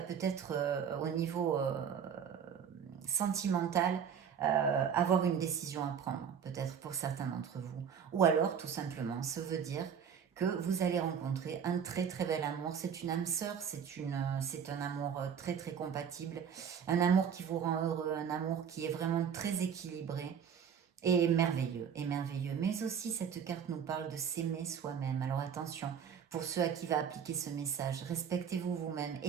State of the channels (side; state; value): left; quieter; 7.7 dB